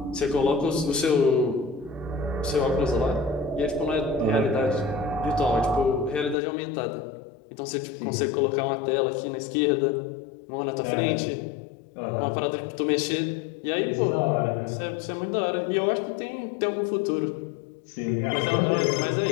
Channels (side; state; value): right; drops out; at 6.4 s